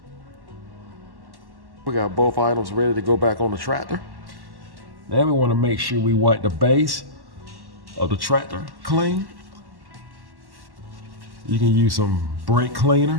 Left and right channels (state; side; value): late; left; 1.1 ms